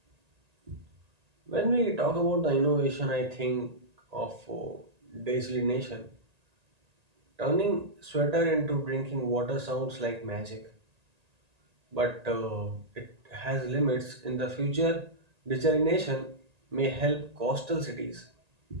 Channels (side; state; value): left; late; 1.9 ms